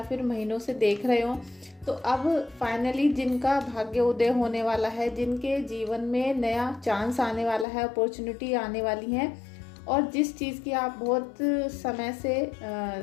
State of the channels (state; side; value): drops out; right; at 7.7 s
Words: फिर महीनों से देख रहे हो, तो अब फाइनली जिनका भाग्य उदय होने वाला है, जिनके जीवन में नया चांस आने वाला है, अपॉर्चुनिटी आने वाली है, और जिस चीज़ की आप बहुत समय से